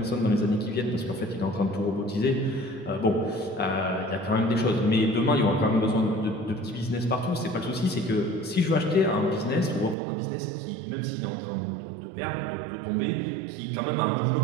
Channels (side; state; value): left; drops out; at 10.0 s